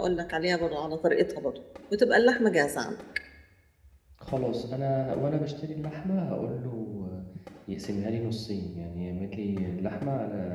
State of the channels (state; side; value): identical; both; correlation 1.00